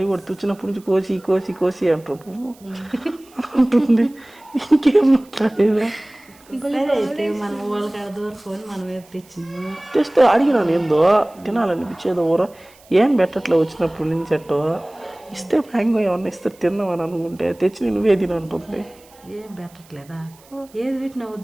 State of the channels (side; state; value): right; noise; hiss, 27 dB below the sound